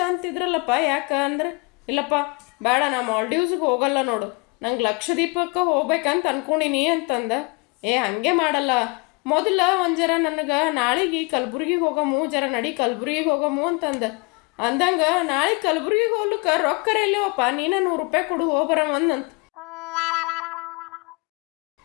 ಅಂತಿದ್ರಲ್ಲಪ್ಪ, ಯಾಕೆ ಅಂದ್ರೆ, ಇಲ್ಲಪ್ಪ ಬೇಡ, ನಾ ಮಾಲ್ಡೀವ್ಸ್ಗೆ ಹೋಗಲ್ಲ ನೋಡು, ನಂಗೆ ಲಕ್ಷದ್ವೀಪಕ್ಕೆ ಹೋಗ್ಬೇಕಂತ ಅನ್ಕೊಂಡಿನಿ ಅಂತಂದ. ಹಂಗೆ ಮಾಡಲ್ಲ, ಮೊದಲ ಒಂದು ಜರ ನನಗೆ ನಾಳೆಗೆ ಕಲಬುರ್ಗಿಗೆ ಹೋಗಮು, ಜರ ನಡಿ ಕಲಬುರ್ಗಿಗೆ ಹೋಗಮು ಅಂತಂದ. ಅಂದಂಗೆ ನಾಳೆ ಕಲಬುರ್ಗಿಗೆ ಹೋಗ್ಲಿಕ್ಕೆ ರೊಕ್ಕರ ಎಲ್ಲವಪ್ಪ, ನೀನು ₹100 ಕೊಡು ಹೋಗ್ಬರಮಂದಂತ.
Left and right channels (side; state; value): right; quieter; 28.6 dB